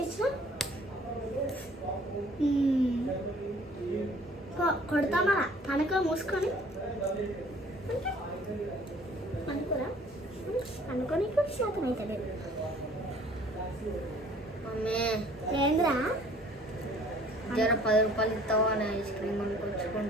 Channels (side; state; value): both; normal; correlation 0.54